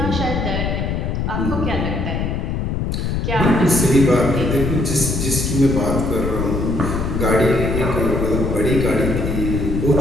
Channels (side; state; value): left; noise; rumble, 1 dB below the sound